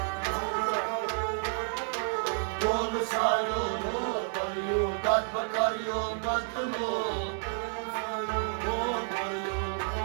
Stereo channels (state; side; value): silent; left; digital silence